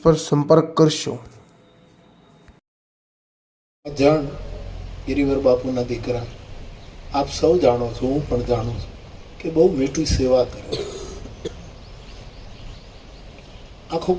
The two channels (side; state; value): both; identical; correlation 1.00